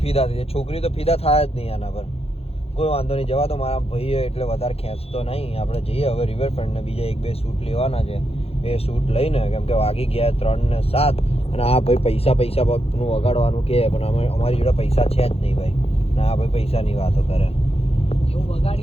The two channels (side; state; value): right; late; 0.29 ms